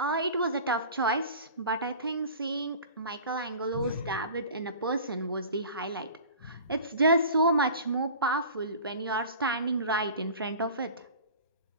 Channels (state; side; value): inverted; both; correlation -0.40